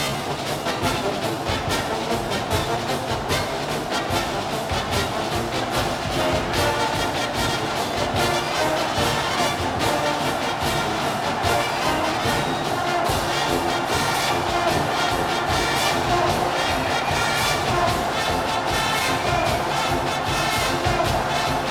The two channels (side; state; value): both; identical; correlation 1.00